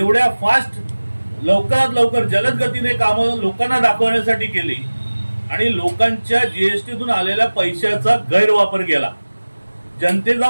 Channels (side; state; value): both; inverted; correlation -1.00